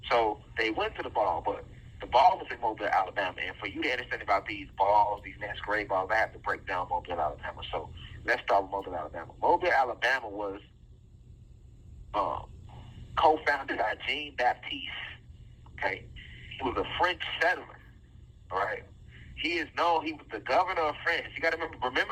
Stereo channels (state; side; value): identical; both; correlation 1.00